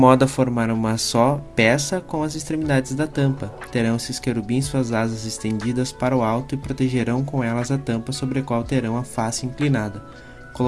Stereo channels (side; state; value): both; identical; correlation 1.00